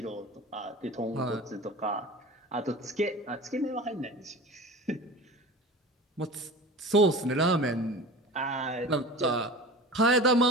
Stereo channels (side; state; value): both; normal; correlation 0.36